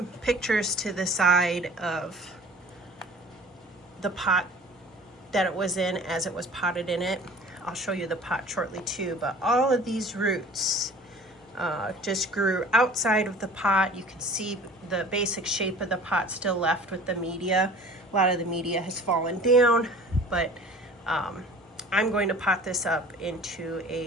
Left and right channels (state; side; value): normal; both; correlation 0.45